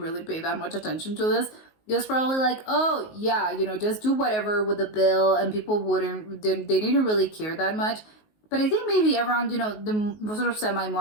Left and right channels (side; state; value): right; late; 19 ms